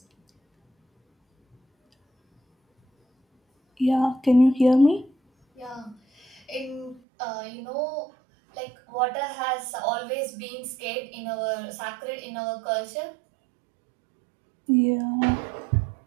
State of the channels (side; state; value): left; drops out; at 7.0 s